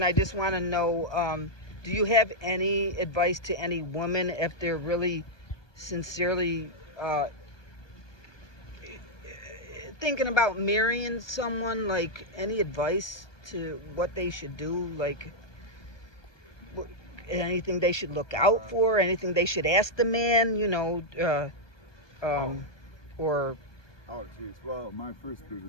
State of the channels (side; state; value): right; late; 1.2 ms